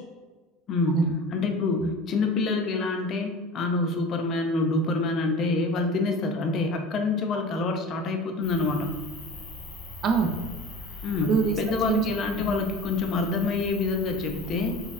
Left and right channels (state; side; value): normal; both; correlation 0.37